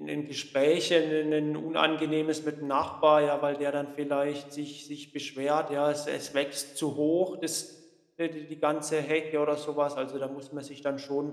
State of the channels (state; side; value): identical; both; correlation 1.00